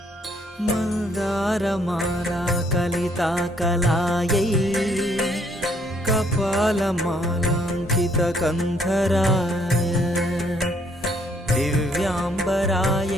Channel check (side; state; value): both; normal; correlation 0.67